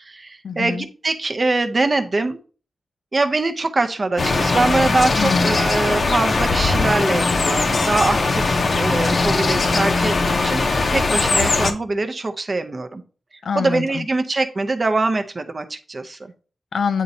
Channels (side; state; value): both; normal; correlation 0.91